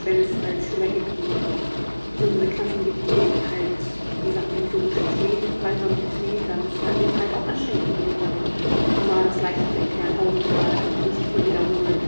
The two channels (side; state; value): both; inverted; correlation -1.00